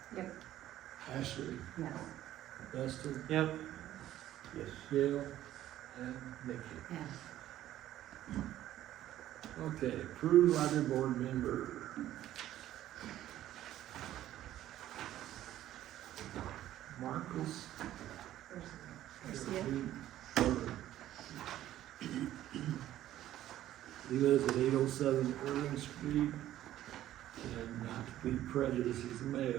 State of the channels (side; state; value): left; quieter; 13.2 dB